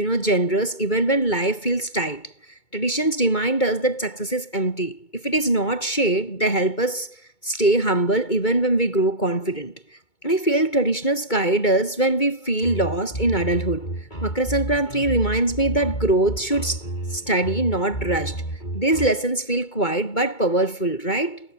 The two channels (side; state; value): right; late; 2.2 ms